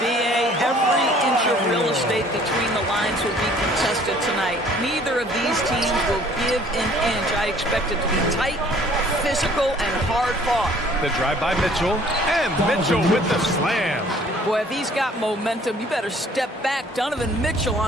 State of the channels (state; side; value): normal; both; correlation 0.55